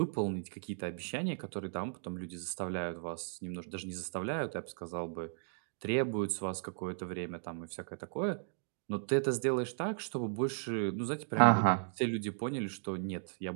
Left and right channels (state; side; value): silent; left; digital silence